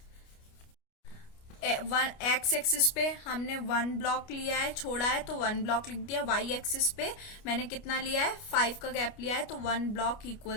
एक्स एक्सिस पे हमने 1 ब्लॉक लिया है, छोड़ा है तो 1 ब्लॉक लिख दिया। वाई एक्सिस पे मैंने कितना लिया है, 5 का गैप लिया है, तो 1 ब्लॉक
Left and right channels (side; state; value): right; late; 29 ms